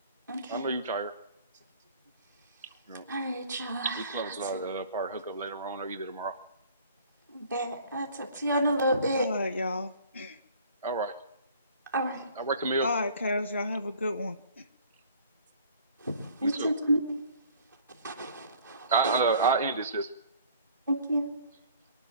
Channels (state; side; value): inverted; both; correlation -0.52